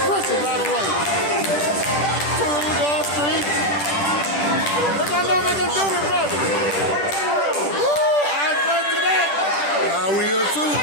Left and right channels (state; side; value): late; right; 10 ms